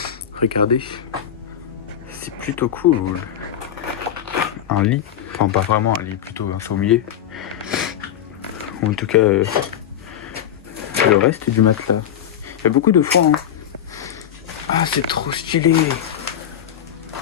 Regardez. C'est plutôt cool. Un lit. Enfin pas vraiment un lit, plutôt un sommier. En tout cas le reste du matelas. Il y a beaucoup de foin. Hein. Ah c'est trop stylé.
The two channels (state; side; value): quieter; right; 9.9 dB